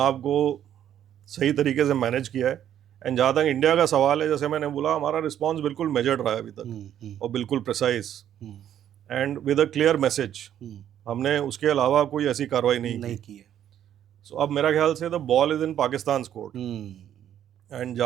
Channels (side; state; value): left; quieter; 10.5 dB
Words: को सही तरीके से मैनेज किया है। एंड जहाँ तक इंडिया का सवाल है, जैसे मैंने बोला, हमारा रिस्पॉन्स बिल्कुल मेजर्ड रहा है अभी तक, और बिल्कुल precise and with a clear message. हमने उसके अलावा कोई ऐसी कार्रवाई नहीं की है। सो अब मेरा ख्याल से the ball is in Pakistan court. And